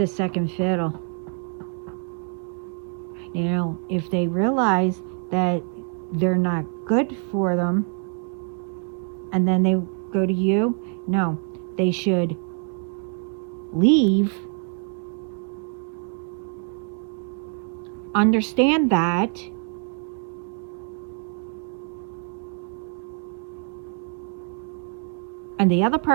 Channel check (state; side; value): quieter; left; 39.8 dB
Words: second fiddle. Now, if they realize that they're not good for them, and then they go to you, no, they should leave, understand that, and the other